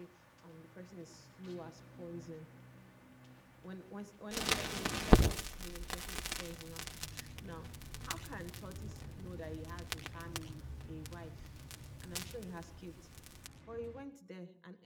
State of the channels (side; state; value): both; identical; correlation 1.00